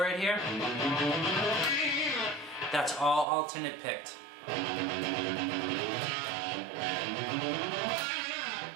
here, that's all alternate picked.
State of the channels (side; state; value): left; drops out; at 3.2 s